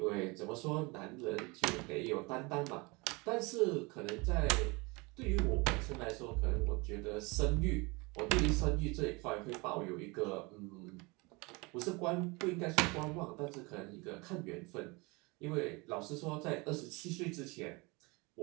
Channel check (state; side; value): quieter; left; 26.4 dB